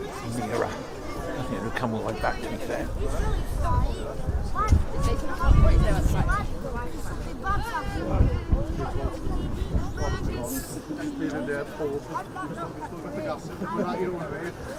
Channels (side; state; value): both; identical; correlation 1.00